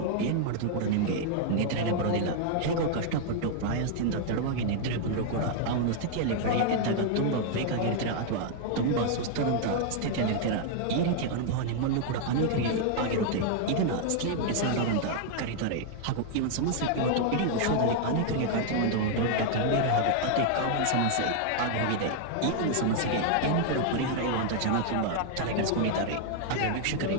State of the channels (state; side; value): different; both; correlation 0.00